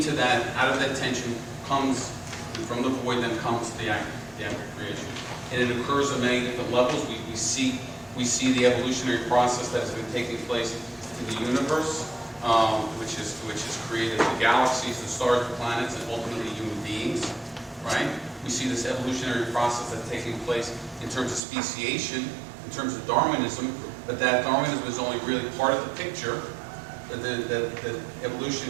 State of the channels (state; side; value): drops out; left; at 21.4 s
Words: that, out of that tension comes, from the void, then comes the act of creation. And it occurs on many different levels. We see the evolutionary process that has been taking place in the universe, which has created the galaxies, the stars, the planets, and ultimately human beings, right? We see this evolutionary process that's taking place in terms of speciation, in terms of Darwinism, but that Darwinism is only really part of the picture. That